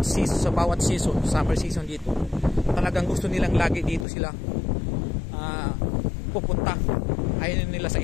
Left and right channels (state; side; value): drops out; right; at 4.0 s